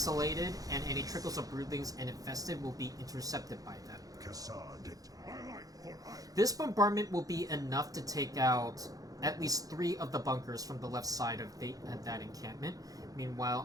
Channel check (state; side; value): late; left; 0.17 ms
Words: and any trickles of broodlings and infested will be intercepted by them. This bombardment will be enough to take out at least 3 of the bunkers from the left side of that encampment. Meanwhile,